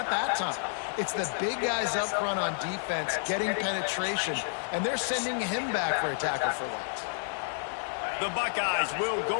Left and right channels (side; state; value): right; silent; 58 dB below the other